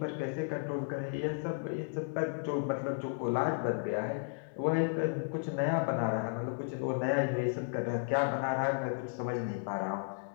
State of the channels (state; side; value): silent; right; digital silence